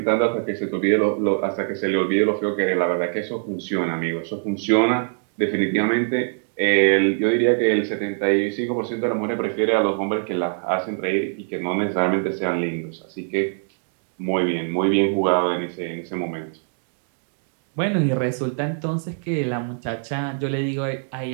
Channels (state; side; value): silent; left; 63 dB below the other